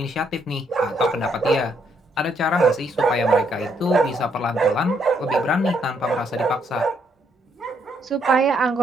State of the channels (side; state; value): both; normal; correlation 0.73